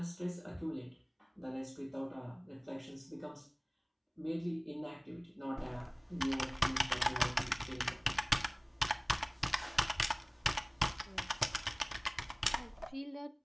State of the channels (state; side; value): identical; both; correlation 1.00